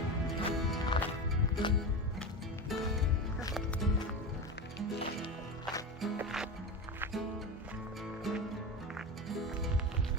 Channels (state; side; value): normal; both; correlation 0.22